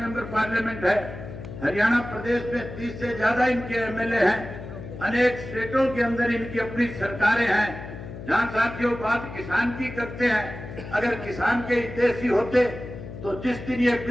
पार्लियामेंट है, हरियाणा प्रदेश में 30 से ज्यादा इनके एमएलए हैं, अनेक स्टेटों के अंदर इनकी अपनी सरकारें हैं। जहां साथियों बात किसान की करते हैं, अगर किसान के हितैषी होते तो जिस दिन ये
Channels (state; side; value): noise; left; hum, 11 dB below the sound